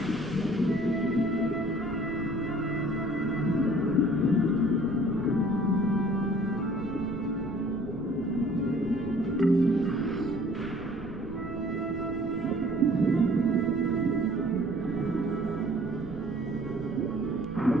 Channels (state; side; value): noise; right; rumble, 13 dB below the sound